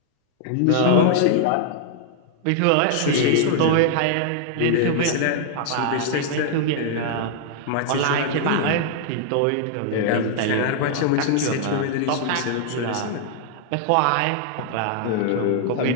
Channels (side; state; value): both; different; correlation 0.00